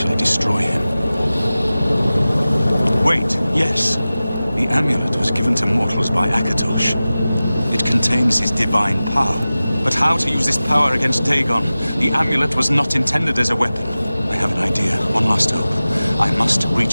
destroy him. Wait, yes. The amulet was given to mortals by Akatosh. It contains his divine power. But how to use this power against Dagon? The amulet was not intended as a weapon. I have an idea. One last hope. I must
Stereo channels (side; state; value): both; inverted; correlation -0.96